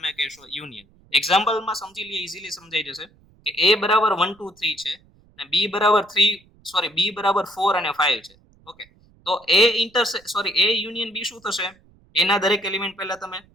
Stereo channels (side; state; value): right; noise; rumble, 30 dB below the sound